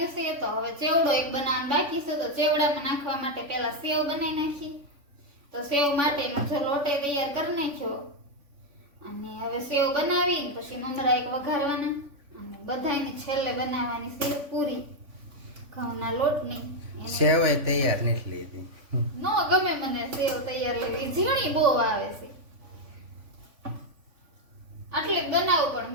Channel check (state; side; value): late; left; 3.5 ms